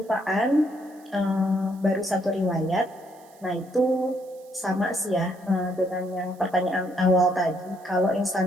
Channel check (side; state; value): right; noise; hiss, 28 dB below the sound